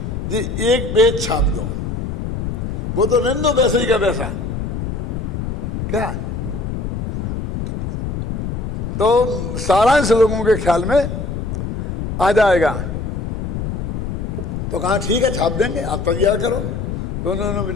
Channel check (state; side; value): noise; left; rumble, 3 dB below the sound